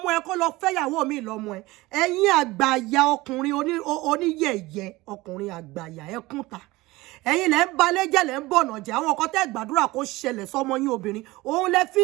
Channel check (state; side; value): quieter; left; 20.2 dB